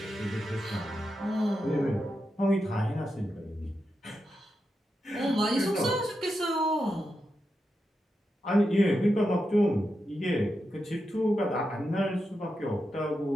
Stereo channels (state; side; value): normal; both; correlation 0.87